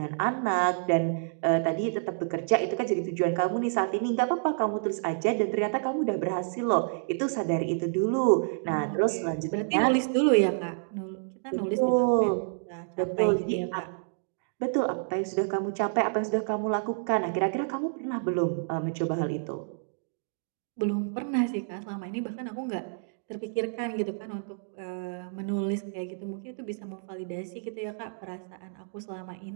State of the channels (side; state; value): left; silent; digital silence